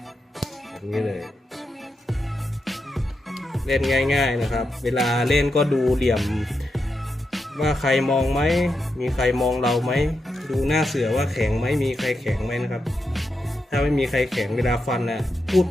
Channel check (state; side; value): normal; both; correlation 0.85